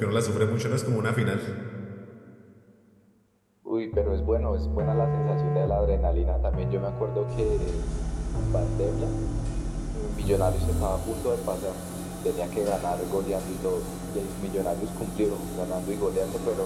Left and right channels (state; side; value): identical; both; correlation 1.00